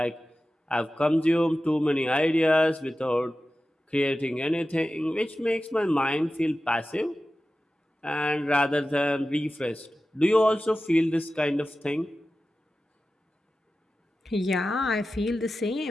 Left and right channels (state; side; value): normal; both; correlation 0.94